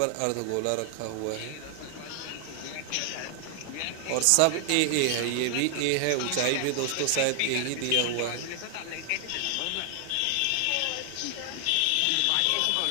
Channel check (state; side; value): different; both; correlation 0.00